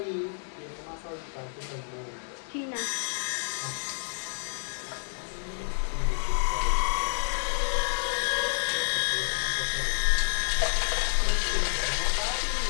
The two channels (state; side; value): silent; right; digital silence